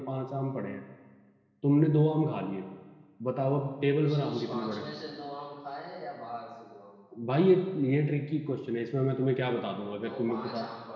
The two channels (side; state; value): both; identical; correlation 1.00